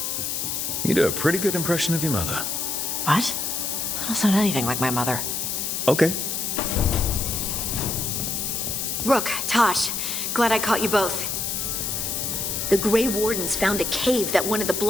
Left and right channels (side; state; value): left; noise; hiss, 2 dB below the sound